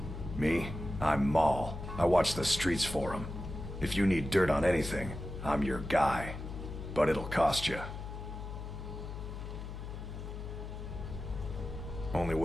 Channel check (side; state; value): left; noise; hum, 8 dB below the sound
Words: Me? I'm Maul. I watch the streets for them. If you need dirt on anything, I'm your guy. But it'll cost you. Only